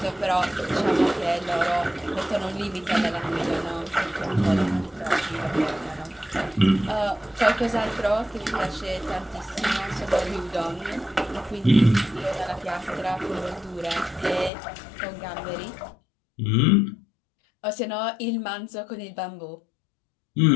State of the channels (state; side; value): drops out; right; at 14.5 s